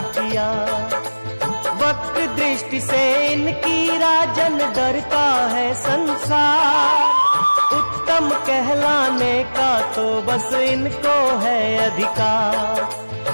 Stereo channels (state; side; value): inverted; both; correlation -1.00